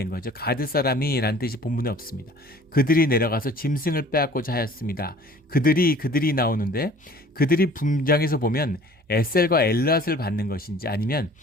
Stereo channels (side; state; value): both; normal; correlation 0.49